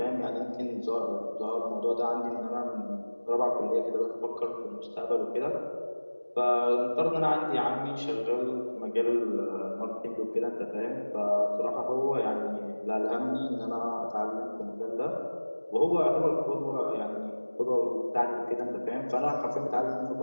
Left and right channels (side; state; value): both; inverted; correlation -1.00